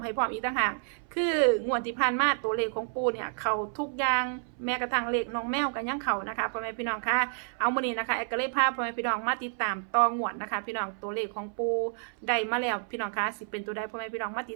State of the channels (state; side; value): silent; left; 58 dB below the other